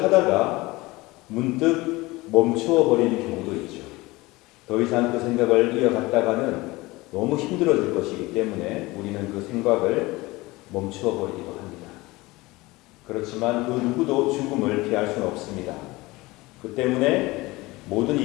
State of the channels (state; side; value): quieter; right; 21.3 dB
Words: 하다가 문득 멈추어 버리는 경우도 있죠. 더 이상 그 생각을 이어갔다가는 너무 힘들어질 것이기 때문에 우리는 그 생각을 멈추어 버리기도 합니다. 그렇지만 그 누구도 죽음을 피할 수는 없습니다. 그 때문에 모든